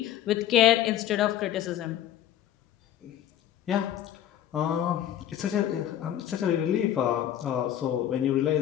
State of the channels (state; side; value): quieter; right; 11.6 dB